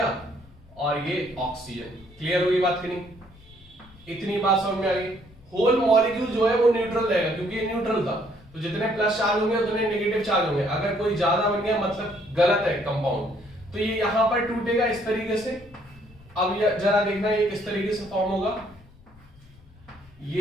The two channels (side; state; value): left; noise; rumble, 25 dB below the sound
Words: और ये ऑक्सीजन। क्लियर होगी बात कि नहीं, इतनी बात समझ में आ गई। होल मॉलिक्यूल जो है वो न्यूट्रल रहेगा, क्योंकि ये न्यूट्रल था, तो जितने प्लस चार्ज होंगे उतने नेगेटिव चार्ज होंगे। अगर कोई ज्यादा बन गया मतलब गलत है कंपाउंड, तो ये यहां पर टूटेगा इस तरीके से। अब जरा देखना ये किस तरीके से फॉर्म होगा,